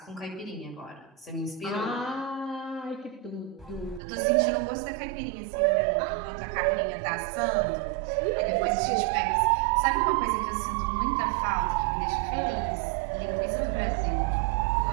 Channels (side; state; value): left; drops out; at 4.0 s